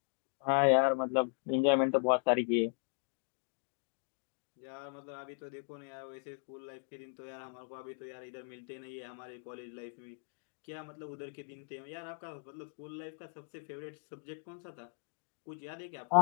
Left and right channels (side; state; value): right; silent; digital silence